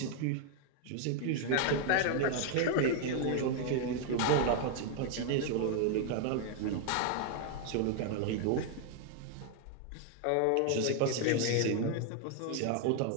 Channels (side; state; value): both; different; correlation 0.00